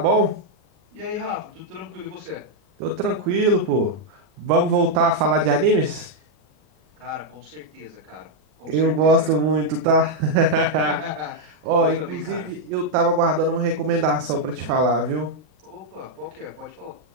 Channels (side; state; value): left; late; 39 ms